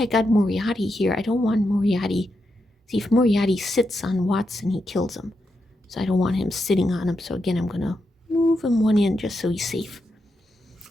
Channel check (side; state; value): both; normal; correlation 0.85